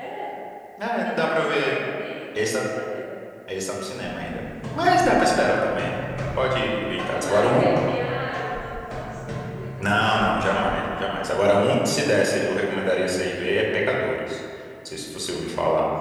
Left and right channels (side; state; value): both; identical; correlation 1.00